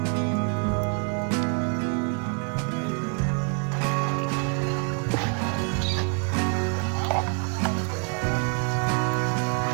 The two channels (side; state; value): left; quieter; 37.7 dB